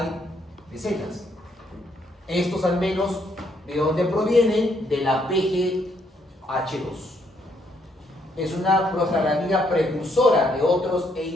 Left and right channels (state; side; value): normal; both; correlation 0.72